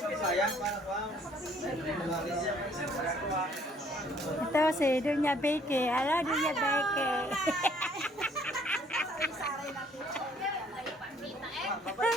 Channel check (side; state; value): both; normal; correlation 0.61